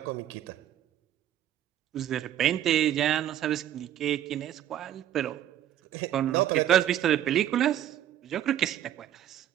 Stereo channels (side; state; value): left; quieter; 11.5 dB